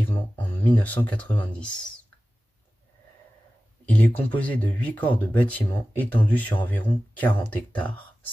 en 1990. Il est composé de 8 corps de bâtiments étendus sur environ 40 hectares,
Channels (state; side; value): normal; both; correlation 0.96